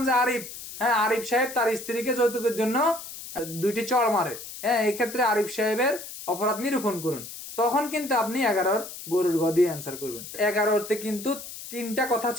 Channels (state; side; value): noise; left; hiss, 12 dB below the sound